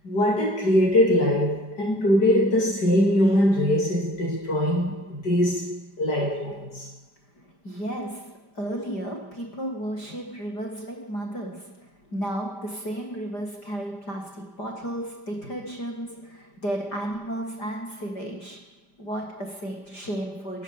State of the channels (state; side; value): late; right; 5.0 ms